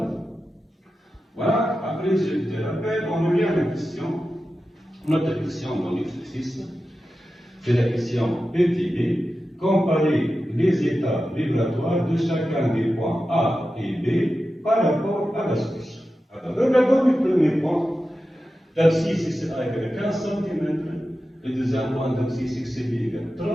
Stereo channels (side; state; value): both; normal; correlation 0.92